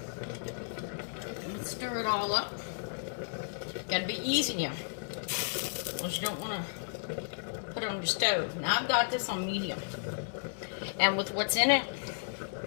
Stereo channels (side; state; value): right; silent; digital silence